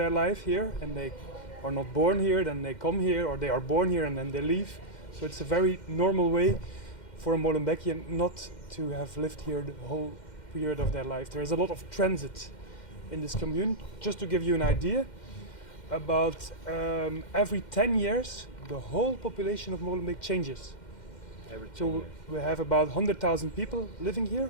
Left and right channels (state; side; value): late; right; 2.1 ms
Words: life here and they are not born here, then they come here, or they are born here and then they leave. So it's a very normal way for a Molenbeekian not to have lived here the whole period of their life. There is a lot of transit in this commune. Just to give you an idea, about every 10 years, the whole population of Molenbeek changes. So we have about 100,000 people living